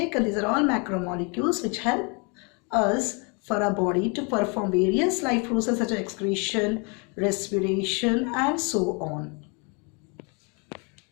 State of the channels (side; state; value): right; quieter; 33.2 dB